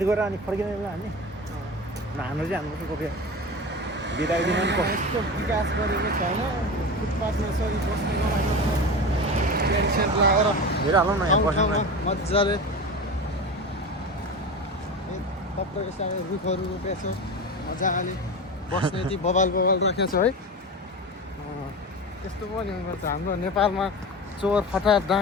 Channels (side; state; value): both; normal; correlation 0.27